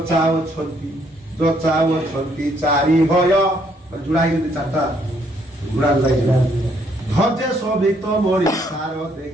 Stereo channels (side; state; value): both; normal; correlation 0.69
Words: যচাওছন্তি চারি ভয় জোড়া হয়ে চারটা ঘোড়া জোড়া ধৈর্য শোভিত মরি সার